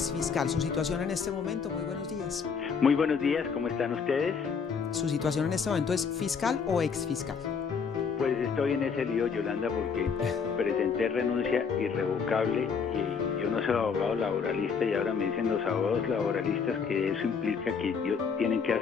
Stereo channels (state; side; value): quieter; right; 6.0 dB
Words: Su situación en este momento, muy buenos días. Muy buenos días, ¿cómo están ustedes? ¿Su situación en este momento es fiscal o exfiscal? Pues estoy en ese lío, Yolanda, porque presenté renuncia irrevocable y yo no soy abogado laboralista y ahora me dicen los abogados laboralistas que eso implica que tienen que